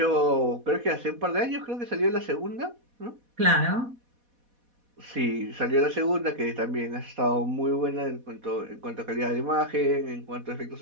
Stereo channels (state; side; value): late; left; 4.1 ms